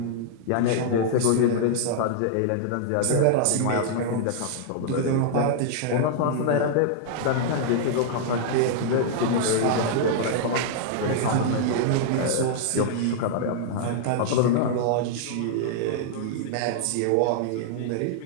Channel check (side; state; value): both; different; correlation -0.01